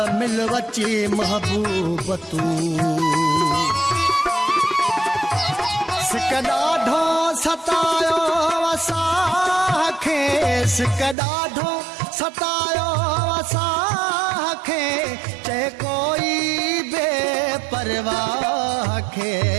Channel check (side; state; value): left; drops out; at 11.2 s